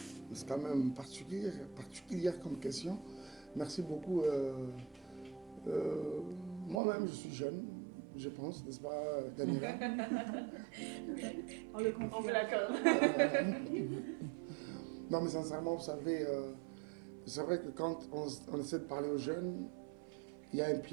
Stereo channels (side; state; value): left; drops out; at 6.8 s